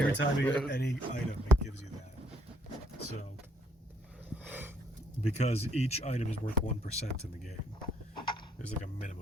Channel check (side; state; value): both; normal; correlation 0.67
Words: time you get any item, it gives you that. So, because each item is worth 1% in the game, there's like a